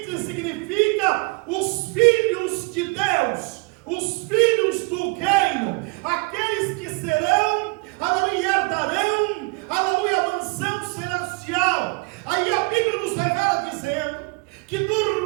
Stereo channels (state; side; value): quieter; left; 29.6 dB